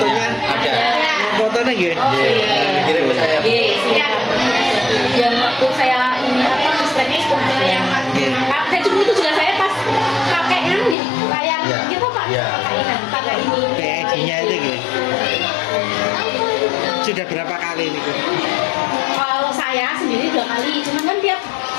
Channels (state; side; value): drops out; right; at 11.0 s